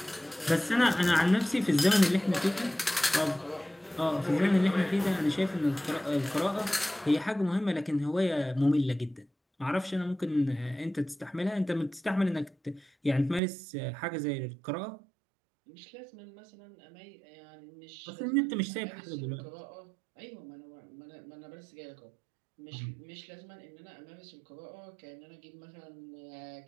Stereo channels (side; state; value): left; drops out; at 13.4 s